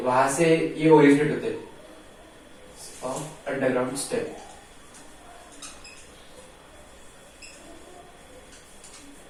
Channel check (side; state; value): both; identical; correlation 1.00